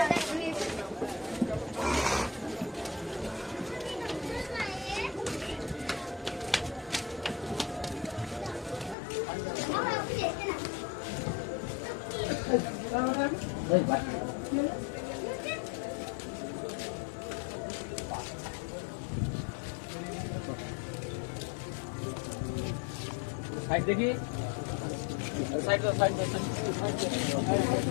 সাইড দেখি, সাইড দাও, সাইড দাও,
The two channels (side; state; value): right; drops out; at 9.0 s